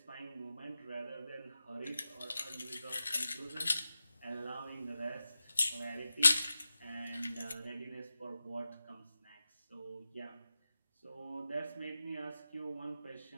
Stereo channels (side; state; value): both; inverted; correlation -0.93